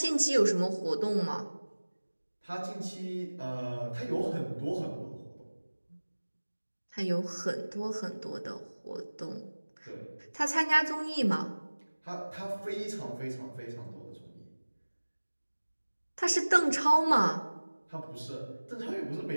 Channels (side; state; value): both; inverted; correlation -1.00